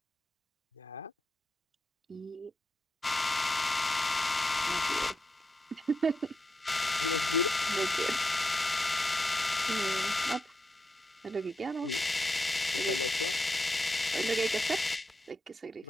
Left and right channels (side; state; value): both; normal; correlation 0.85